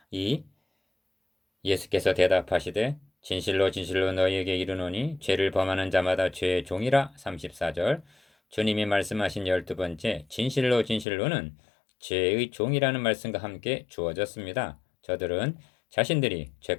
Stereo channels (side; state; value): right; drops out; at 11.1 s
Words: 2. 예수께서 대답하시되 진실로 진실로 너희에게 이르노니 죄를 범하는 자마다 죄의 종이라. 34절 주님이 말씀하신 12번째 진실로 진실로는 죄의 종이라는 말씀과 함께 주어졌습니다. 저들은 자신들이